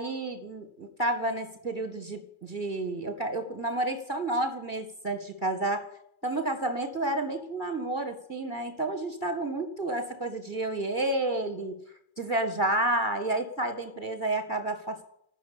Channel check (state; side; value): late; right; 2.4 ms